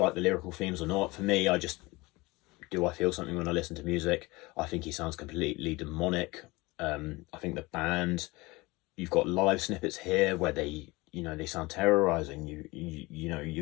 the lyrical themes or not. For me, I feel something when I listen to music. I think he sounds completely demonic. I think the band, you've got live snippets here where they sound terrorizing.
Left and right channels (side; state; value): right; quieter; 22.6 dB